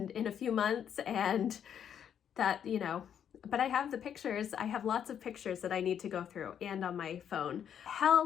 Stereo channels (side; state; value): right; quieter; 8.8 dB